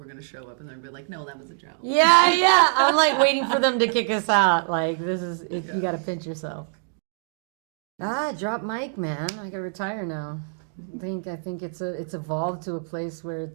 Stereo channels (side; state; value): left; silent; digital silence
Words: going to show up and they're going to be like, no, that was a joke. Yeah. I'm like waiting for them to kick us out. Like, this is, you got to pinch yourself. Drop mic, man. I got to retire now. I think it's evolved to a place where